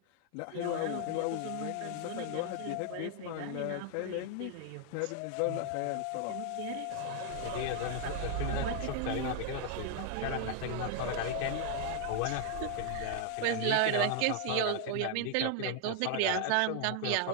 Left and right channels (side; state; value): both; different; correlation 0.00